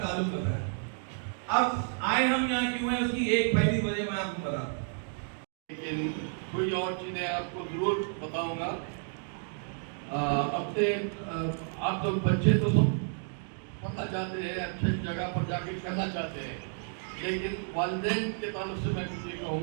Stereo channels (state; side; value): silent; left; 57 dB below the other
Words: होता है। अब आए हम यहाँ क्यों हैं उसकी एक पहली वजह मैं आपको बताता हूँ, लेकिन कोई और चीज़ें आपको ज़रूर बताऊंगा। अपने आप लोग बच्चे तो सब पढ़ना चाहते हैं, अच्छी जगह पर जाके करना चाहते हैं, लेकिन वालिदैन के ताल्लुक से मैं कुछ ये